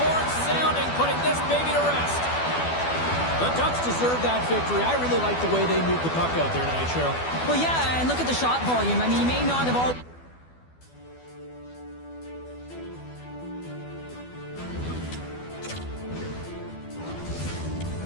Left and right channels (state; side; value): late; right; 12 ms